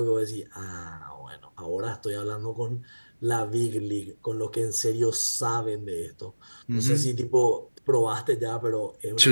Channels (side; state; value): both; inverted; correlation -1.00